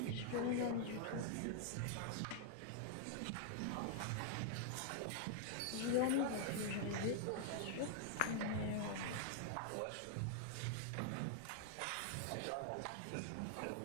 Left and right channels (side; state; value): both; different; correlation 0.00